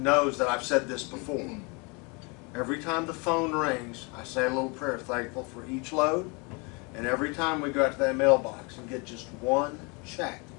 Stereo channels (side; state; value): right; quieter; 30.6 dB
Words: that I've said this before. Every time the phone rings, I say a little prayer, thankful for each load. And every time we go out to that mailbox and get just one check,